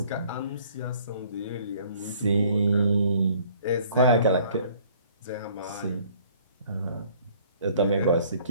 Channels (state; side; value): inverted; both; correlation -0.57